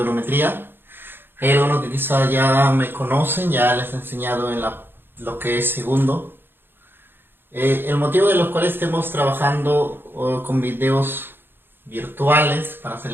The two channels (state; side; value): late; left; 0.10 ms